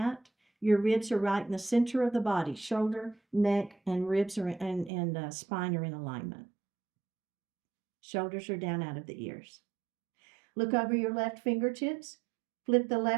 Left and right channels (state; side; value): drops out; left; at 4.9 s